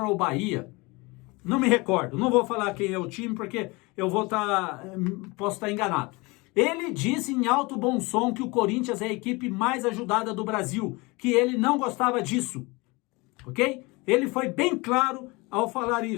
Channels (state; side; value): quieter; right; 25.1 dB